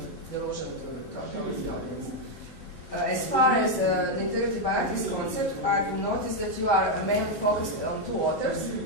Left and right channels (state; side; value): normal; both; correlation 0.02